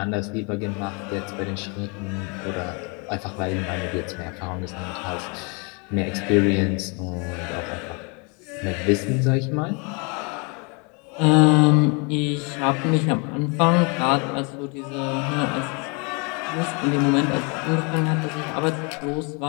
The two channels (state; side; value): quieter; right; 32.9 dB